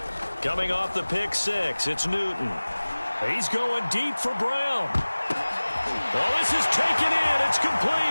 Coming off the pick six, it's Newton. He's going deep for Brown. Oh, this is taken in. It's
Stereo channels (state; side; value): inverted; both; correlation -1.00